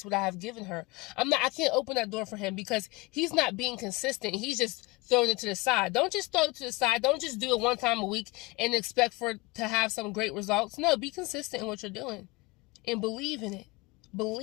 what I have given her. I can't open that door for him because he's not being consistent. He's just throwing it to the side. Don't just throw it to the side. Don't just do it one time a week and expect to have some great results. No, be consistent in what you're doing and believe in it.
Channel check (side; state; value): right; quieter; 23.3 dB